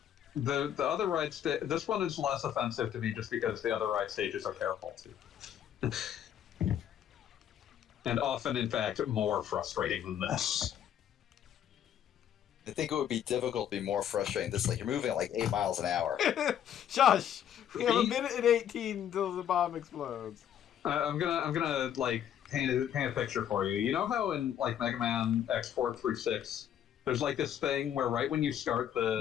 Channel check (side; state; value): right; quieter; 9.9 dB